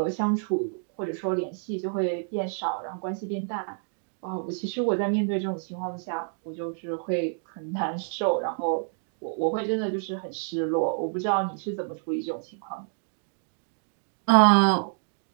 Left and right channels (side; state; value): left; silent; 58 dB below the other